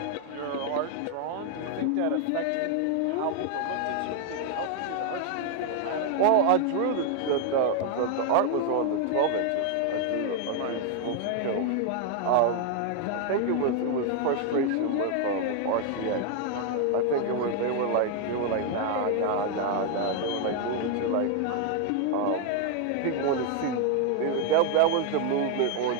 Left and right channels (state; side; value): different; both; correlation 0.00